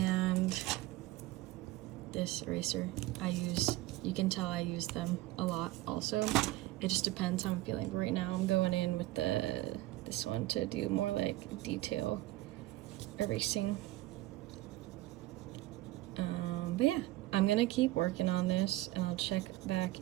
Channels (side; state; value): left; quieter; 17.3 dB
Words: this eraser I use. You can tell I use them a lot also. It just depends how I'm feeling. Right now I'm going in with this one to do more like detail erasing. But yeah, I'm gonna keep working on this, and I'll check back